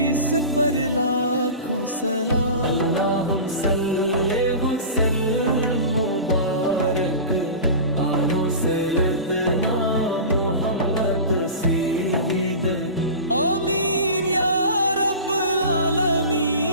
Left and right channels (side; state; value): both; inverted; correlation -0.34